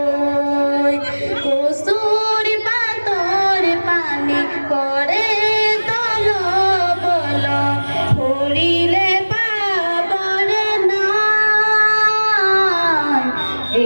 কসুর পাতর পানি করে তল বল হরিলে পাবরে নাই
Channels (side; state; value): both; inverted; correlation -1.00